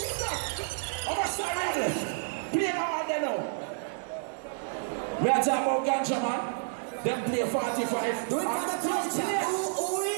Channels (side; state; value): left; silent; digital silence